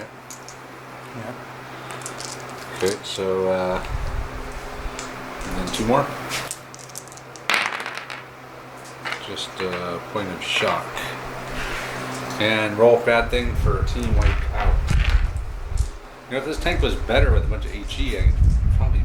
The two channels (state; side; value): identical; both; correlation 1.00